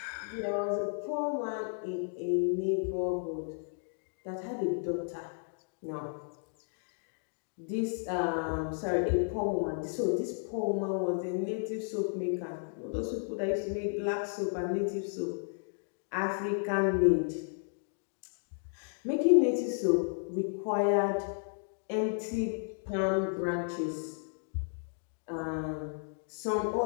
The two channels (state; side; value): silent; right; digital silence